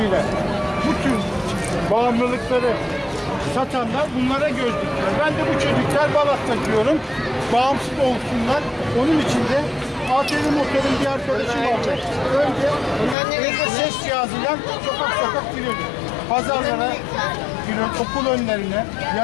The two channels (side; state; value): right; drops out; at 13.2 s